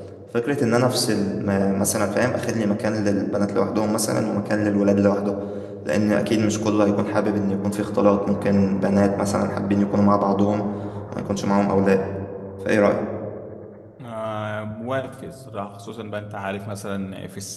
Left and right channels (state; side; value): identical; both; correlation 1.00